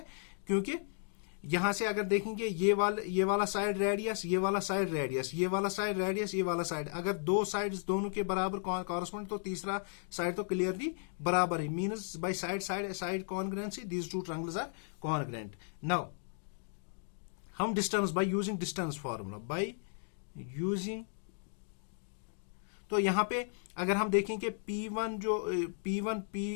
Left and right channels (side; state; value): right; silent; digital silence